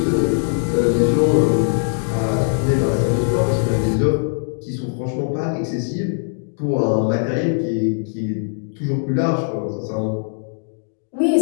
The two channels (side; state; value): right; silent; digital silence